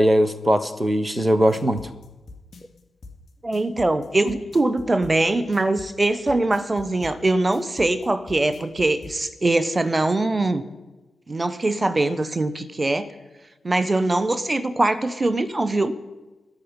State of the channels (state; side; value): normal; both; correlation 0.95